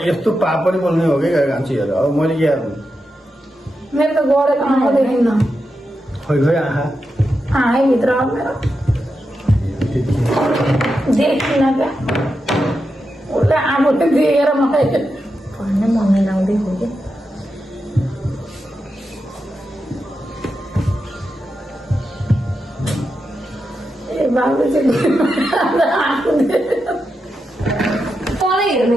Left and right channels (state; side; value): normal; both; correlation 0.88